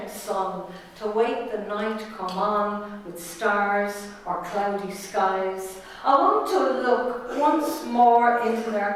sun, to wait the night come on with stars or cloudy skies. I want to look once more into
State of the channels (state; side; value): identical; both; correlation 1.00